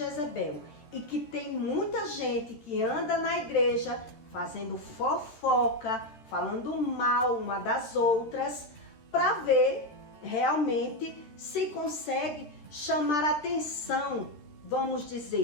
E que tem muita gente que anda na igreja fazendo fofoca, falando mal uma das outras, para ver realmente se consegue chamar a atenção, vamos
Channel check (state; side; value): late; right; 13 ms